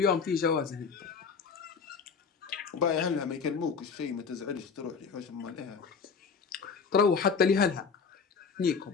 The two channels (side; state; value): right; quieter; 5.6 dB